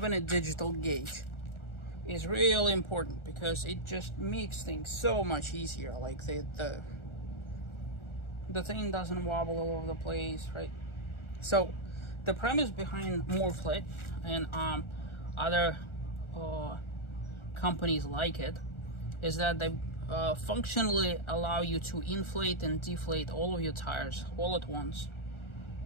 a digital gauge is really important because it just makes things so much easier. Like the thing doesn't wobble all over the place, right? So the premise behind Morrflate and other companies like it is that they functionally allow you to inflate and deflate all of your tires all at once,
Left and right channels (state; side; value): late; right; 1.4 ms